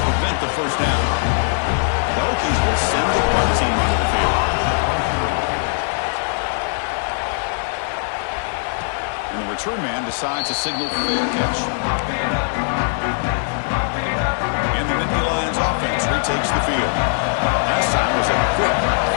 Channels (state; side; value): silent; right; digital silence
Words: prevent the first down. The Hokies will send the punt team onto the field. And the return man decides to signal fair catch. And the Nittany Lions offense retakes the field. Last time was a quick